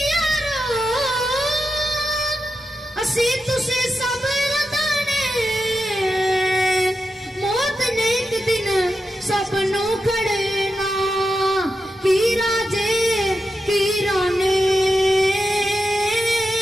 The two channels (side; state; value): both; normal; correlation 0.88